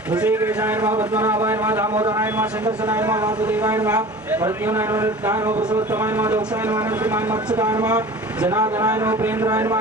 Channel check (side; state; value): both; normal; correlation 0.39